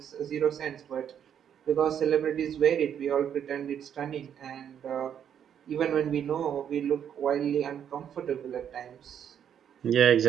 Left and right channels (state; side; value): quieter; left; 8.9 dB